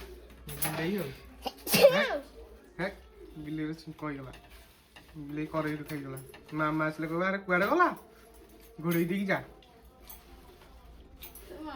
बिल्ली हो है बिल्ली रे कहि गला बिल्ली करे रो खाई गला मामा आसले कहबा अरे कुआडे गला घोड़ी दी जा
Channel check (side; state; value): both; identical; correlation 1.00